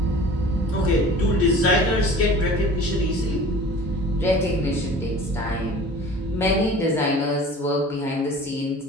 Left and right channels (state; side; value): normal; both; correlation 0.43